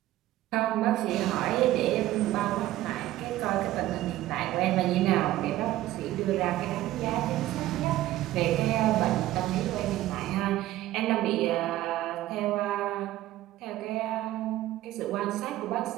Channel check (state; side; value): quieter; left; 15.1 dB